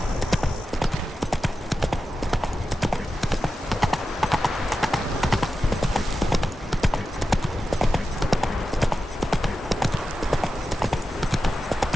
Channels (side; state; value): both; normal; correlation 0.92